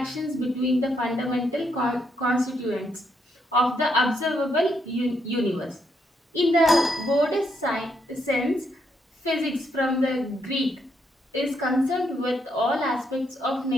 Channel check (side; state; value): both; normal; correlation 0.76